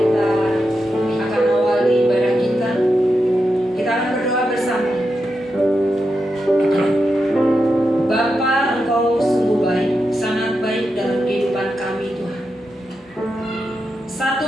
akan awali ibadah kita. Kita akan berdoa bersama. Bapa, Engkau sungguh baik, sangat baik dalam kehidupan kami Tuhan.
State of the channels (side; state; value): both; normal; correlation 0.87